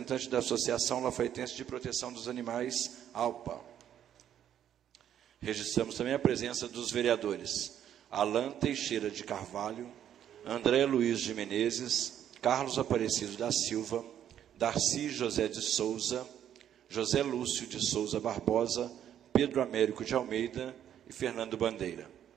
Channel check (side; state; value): left; quieter; 10.1 dB